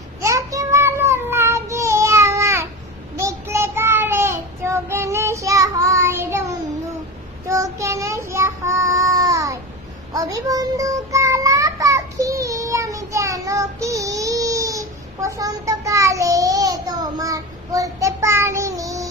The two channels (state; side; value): normal; both; correlation 0.26